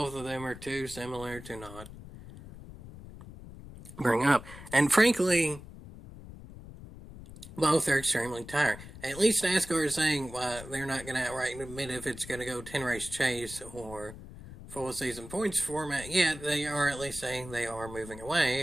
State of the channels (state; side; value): noise; left; rumble, 15 dB below the sound